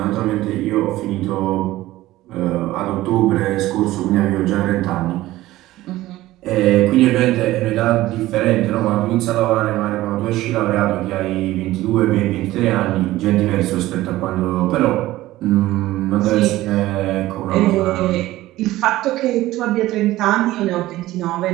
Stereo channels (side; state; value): left; quieter; 16.5 dB